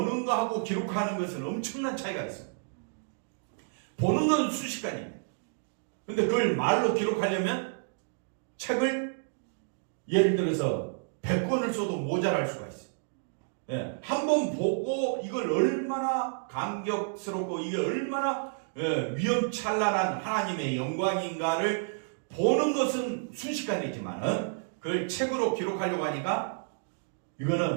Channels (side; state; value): left; silent; digital silence